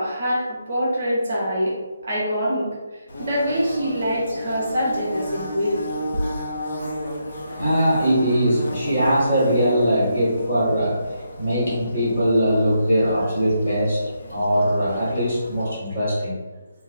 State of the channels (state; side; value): inverted; both; correlation -0.81